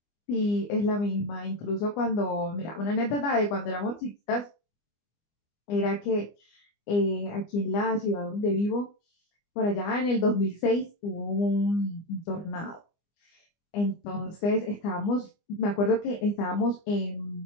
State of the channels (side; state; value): right; late; 25 ms